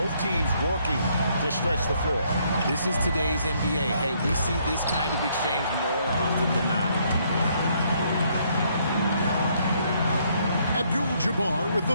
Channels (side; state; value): both; inverted; correlation -0.69